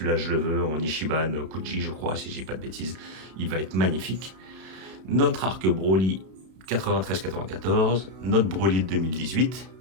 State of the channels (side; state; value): left; late; 32 ms